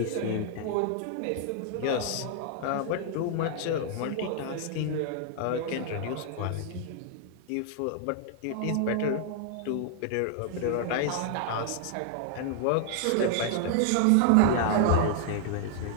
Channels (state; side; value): different; both; correlation 0.00